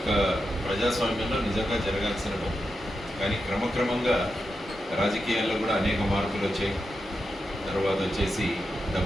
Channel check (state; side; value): normal; both; correlation 0.88